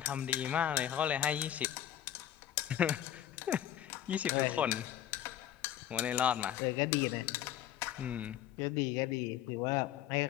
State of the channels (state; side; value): quieter; right; 11.5 dB